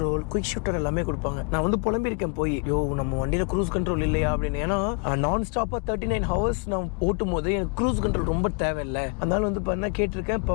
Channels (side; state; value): right; quieter; 34.3 dB